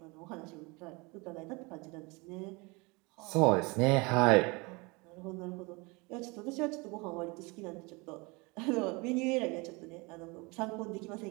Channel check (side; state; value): left; quieter; 26.8 dB